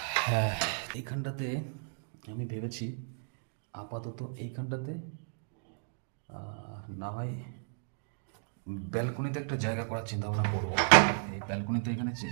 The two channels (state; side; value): silent; left; digital silence